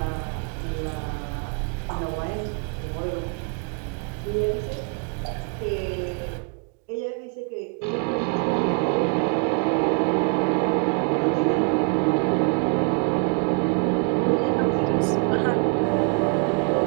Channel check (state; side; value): quieter; left; 37.0 dB